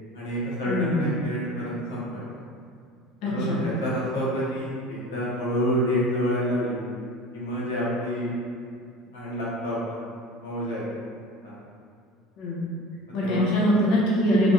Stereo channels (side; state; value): both; normal; correlation 0.39